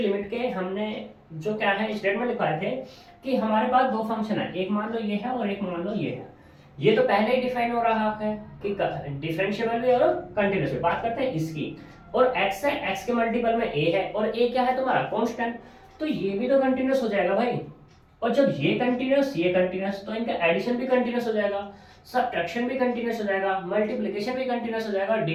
के हमने जो क्या है स्टेटमेंट लिखवाए थे कि हमारे पास दो फंक्शन है, एक मान लो ये है और एक मान लो ये है। ये तो पहले ही डिफाइन हो रहा है कि डिफरेंशिएबल भी और कंटिन्यूस भी। बात करते हैं इसकी, और x है, x के मल्टीपल में a है, और a क्या है तुम्हारा, कांस्टेंट। तो ये भी तो कंटिन्यूस हो जाएगा भाई। और जब ये कंटिन्यूस तो इनका एडिशन भी कंटिन्यूस हो जाएगा, सब्ट्रैक्शन भी कंटिन्यूस हो जाएगा, मल्टीप्लिकेशन भी कंटिन्यूस हो जाएगा,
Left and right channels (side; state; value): both; identical; correlation 1.00